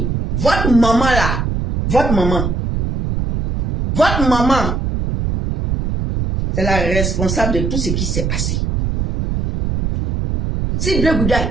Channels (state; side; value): noise; right; rumble, 1 dB below the sound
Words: votre maman là, votre maman, c'est la responsable de tout ce qui s'est passé. Si Blé Goudé a